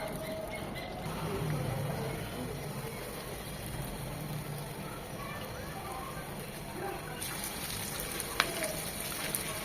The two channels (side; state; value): both; identical; correlation 1.00